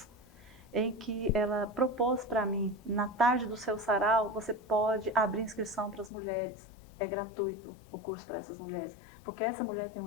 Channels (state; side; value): drops out; right; at 6.1 s